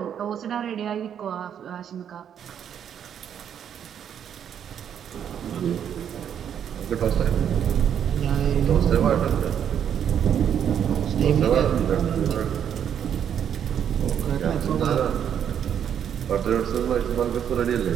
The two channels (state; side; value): quieter; left; 8.9 dB